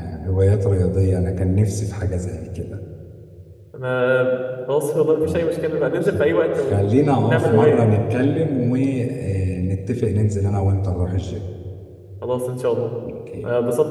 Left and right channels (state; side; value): identical; both; correlation 1.00